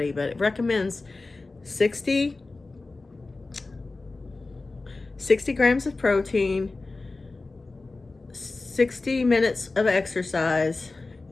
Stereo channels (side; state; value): right; quieter; 3.5 dB